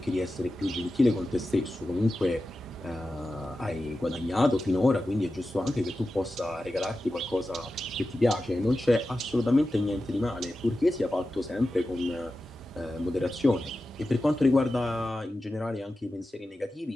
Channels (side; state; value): both; normal; correlation 0.92